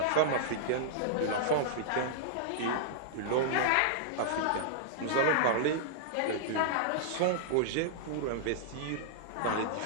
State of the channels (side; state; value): both; different; correlation -0.02